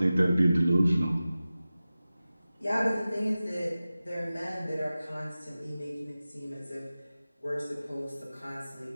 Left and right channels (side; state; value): both; inverted; correlation -0.96